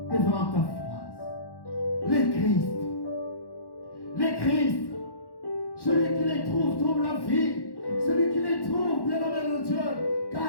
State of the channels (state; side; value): late; right; 1.1 ms